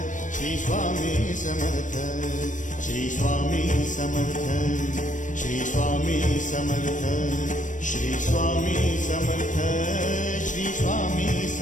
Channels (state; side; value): late; right; 0.37 ms